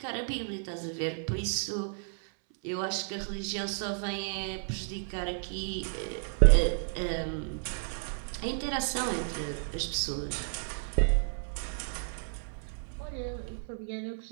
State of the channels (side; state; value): left; silent; 56 dB below the other